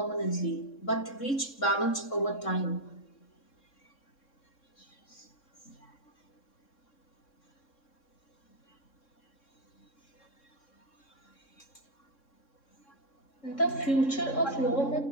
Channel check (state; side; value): late; right; 3.6 ms